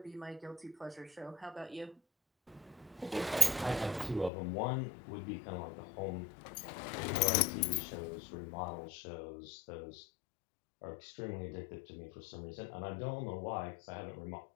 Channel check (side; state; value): right; drops out; at 4.3 s